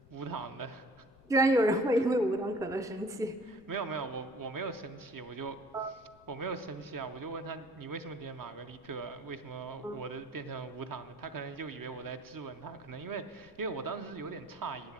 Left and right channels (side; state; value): left; noise; rumble, 25 dB below the sound